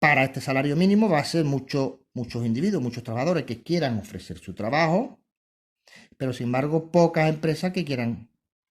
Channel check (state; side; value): identical; both; correlation 1.00